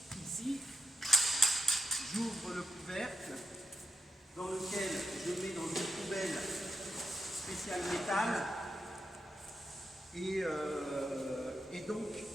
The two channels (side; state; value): both; normal; correlation 0.86